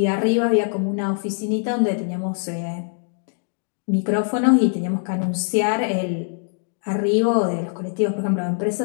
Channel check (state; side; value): silent; right; digital silence